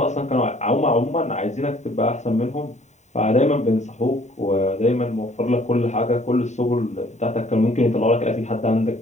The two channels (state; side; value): late; right; 0.34 ms